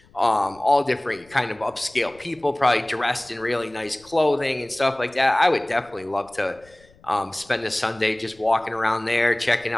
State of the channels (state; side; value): noise; left; rumble, 29 dB below the sound